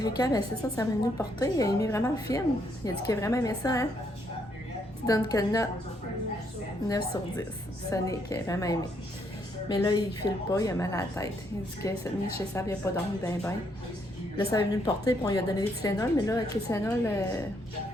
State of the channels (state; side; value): normal; both; correlation 0.73